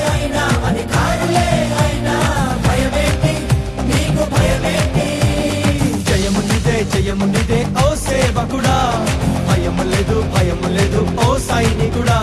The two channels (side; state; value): both; identical; correlation 1.00